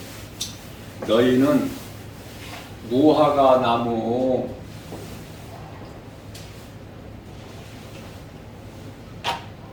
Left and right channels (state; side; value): identical; both; correlation 1.00